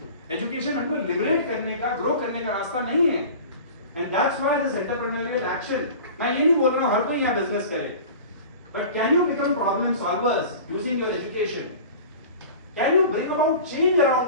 एजुकेशन हमको लिबरेट करने का, ग्रो करने का रास्ता नहीं है। And that's why this entrepreneurial action, मैं ये नहीं बोल रहा हूँ हर कोई यहाँ बिजनेस करे, but can you become problem solvers using your education? Can you bring about change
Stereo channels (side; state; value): both; inverted; correlation -0.39